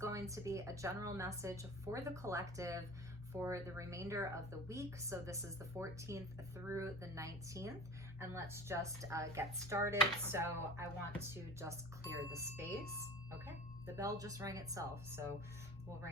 to be a general message for the collective for the remainder of the week. So this is the 14th through the 19th, and let's just get started. So I want to just clear the space. Okay, the bell just rang itself, so we'll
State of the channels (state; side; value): normal; both; correlation 0.38